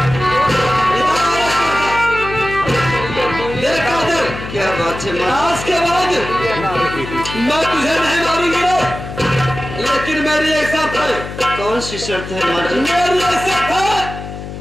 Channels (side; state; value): left; noise; hum, 10 dB below the sound